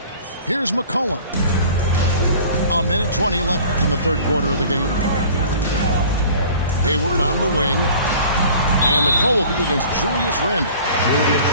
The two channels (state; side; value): inverted; both; correlation -0.47